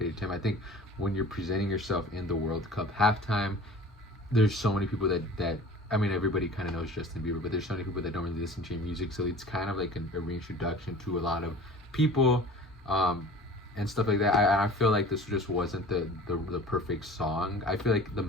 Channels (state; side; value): normal; both; correlation 0.42